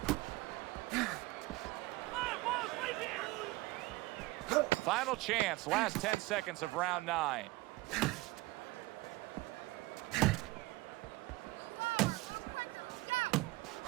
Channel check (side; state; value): left; quieter; 21.4 dB